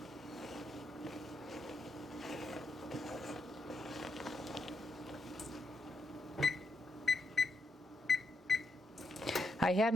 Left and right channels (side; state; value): both; normal; correlation 0.81